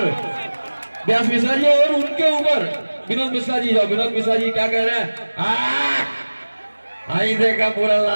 व्यास मिश्रा जी और उनके ऊपर विनोद मिश्रा जी। जाओ, विनोद मिश्रा जी क्या कह रहे हैं? आई देखा पूरा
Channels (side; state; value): both; inverted; correlation -1.00